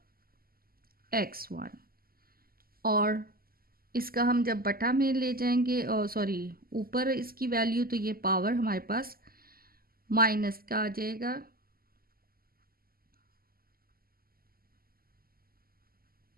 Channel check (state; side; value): late; left; 0.43 ms